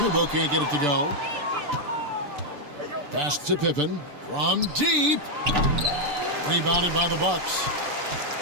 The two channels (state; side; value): late; left; 6.8 ms